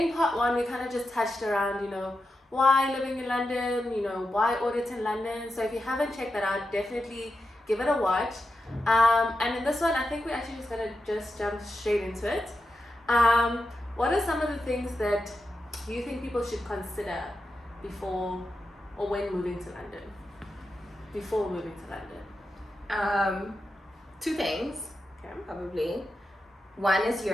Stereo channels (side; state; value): both; normal; correlation 0.89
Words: part 1 we kind of just touched around, why living in London, why audit in London. So if you haven't checked that out, definitely give it a watch. And in this one, I think we're actually just gonna jump straight into it. What are some of the things that you think people should consider before or when moving to London? Before moving to London? 2 things, Okay. probably. One is your